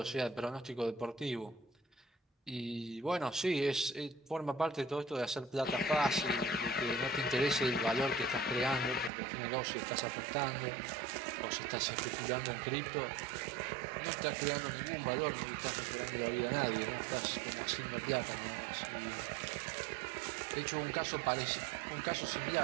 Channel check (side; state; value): left; drops out; at 9.1 s